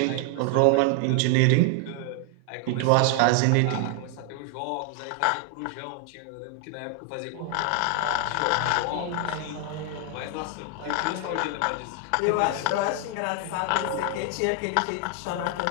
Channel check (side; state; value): both; different; correlation 0.00